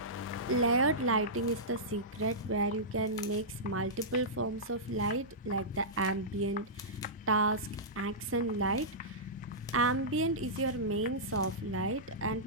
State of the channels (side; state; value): both; normal; correlation -0.15